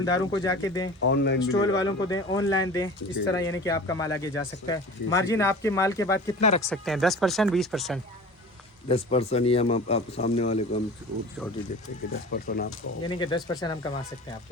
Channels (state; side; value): normal; both; correlation 0.38